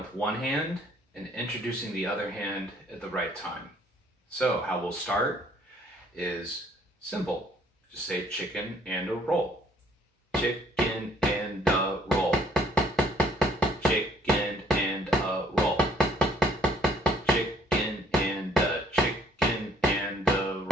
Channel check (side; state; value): both; normal; correlation 0.62